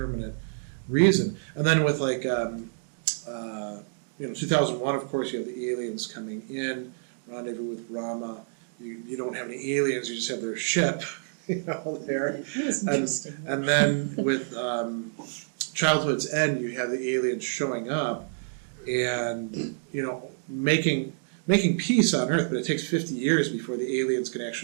reason. And then with like 2001, of course, you have the aliens coming in, Rendezvous with Rama. You don't have any aliens, you just have their ship, there. It was interesting. And then with Childhood's End, you have the aliens showing up and, making peace on Earth, but it takes 50 years before the aliens can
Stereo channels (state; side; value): silent; left; digital silence